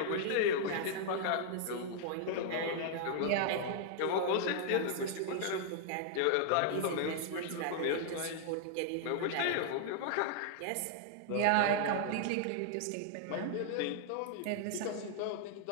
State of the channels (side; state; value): both; different; correlation -0.01